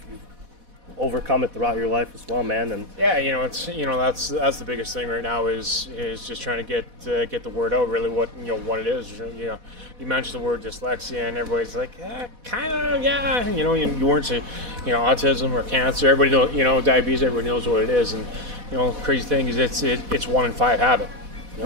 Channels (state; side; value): late; left; 4.1 ms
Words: overcome it throughout your life as well, man. And yeah, it's that's the biggest thing right now is just trying to get the word out. Really, what it is. You mentioned the word dyslexia, and everybody's like, kind of, yeah. You weren't saying, autism or cancer. Everybody knows, diabetes. Everybody knows what it is, and crazy thing is it's 1 in 5 have it.